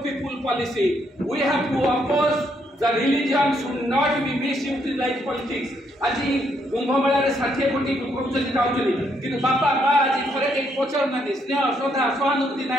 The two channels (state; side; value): normal; both; correlation 0.74